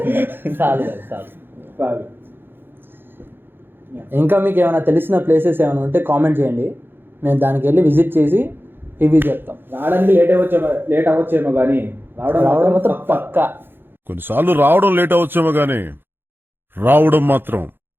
చాలు. ఇంకా మీకు ఏమైనా తెలిసిన ప్లేసెస్ ఏమైనా ఉంటే కామెంట్ చేయండి, మేము దానికి వెళ్ళి విజిట్ చేసి రివ్యూ చెప్తాం. రావడానికి లేట్ అవ్వచ్చేమో కానీ రావడం మాత్రం పక్కా. కొన్నిసార్లు రావడం లేట్ అవచ్చేమో కానీ రావడం మాత్రం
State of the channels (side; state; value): left; late; 0.10 ms